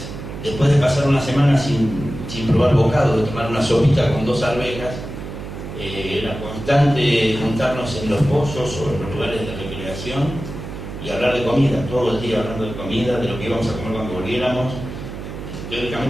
después de pasar una semana sin probar bocado, de tomar una sopita con 2 arvejas, era constante juntarnos en los pozos o en los lugares de recreación y hablar de comida, todo el día hablando de comida, de lo que íbamos a comer cuando volviéramos.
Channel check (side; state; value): right; noise; hum, 10 dB below the sound